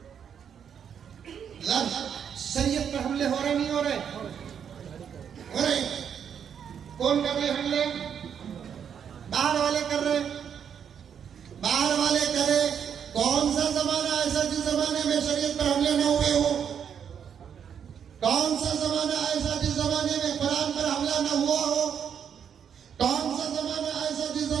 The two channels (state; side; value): quieter; left; 8.0 dB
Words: शरीयत पर हमले हो रहे नहीं हो रहे? हो रहे। कौन कर रहे हमले? बाहर वाले कर रहे, बाहर वाले करे। कौन सा जमाना ऐसा जिस जमाने में शरीयत पर हमले न हुए हो? कौन सा जमाना ऐसा जिस जमाने में कुरान पर हमला न हुआ हो?